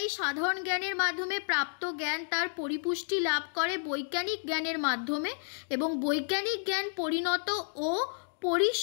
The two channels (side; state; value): right; silent; digital silence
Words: এই সাধারণ জ্ঞানের মাধ্যমে প্রাপ্ত জ্ঞান তার পরিপুষ্টি লাভ করে বৈজ্ঞানিক জ্ঞানের মাধ্যমে, এবং বৈজ্ঞানিক জ্ঞান পরিণত ও